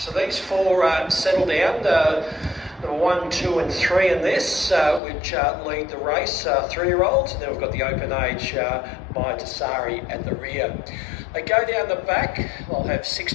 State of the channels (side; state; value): right; drops out; at 5.0 s